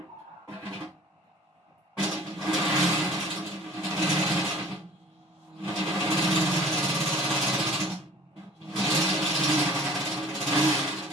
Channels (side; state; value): both; normal; correlation 0.49